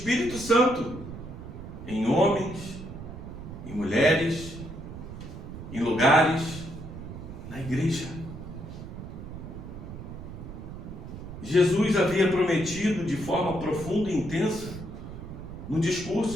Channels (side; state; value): right; noise; rumble, 11 dB below the sound